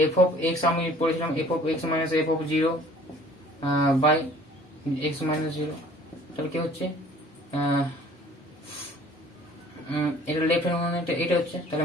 এফ অফ এক্স আমি পড়েছিলাম F of X minus F of 0 by X minus 0। তাহলে কি হচ্ছে, এটা লেফট হ্যান্ড মানে এটা হচ্ছে, তাহলে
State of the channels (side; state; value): both; normal; correlation 0.52